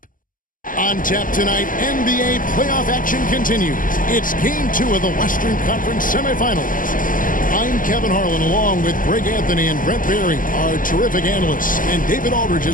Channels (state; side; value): late; right; 0.39 ms